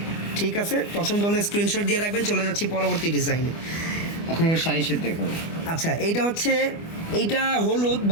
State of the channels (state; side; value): late; right; 25 ms